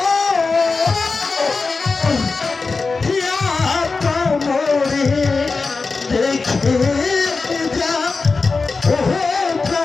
মরে দেখে যা ও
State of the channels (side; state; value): right; quieter; 4.2 dB